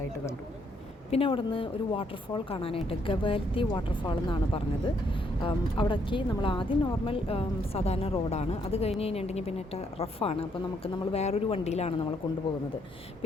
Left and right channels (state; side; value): normal; both; correlation 0.72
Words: കണ്ടു. പിന്നെ അവിടെ നിന്ന് ഒരു വാട്ടർഫാൾ കാണാനായിട്ട്, ഗവാൽത്തി വാട്ടർഫാൾ എന്നാണ് പറഞ്ഞത്. അവിടേക്ക് നമ്മൾ ആദ്യം നോർമൽ സാധാരണ റോഡാണ്. അത് കഴിഞ്ഞ് കഴിഞ്ഞിട്ടുണ്ടെങ്കിൽ പിന്നെ റഫാണ്. അപ്പോൾ നമ്മൾ വേറൊരു വണ്ടിയിലാണ് നമ്മൾ കൊണ്ടുപോകുന്നത്.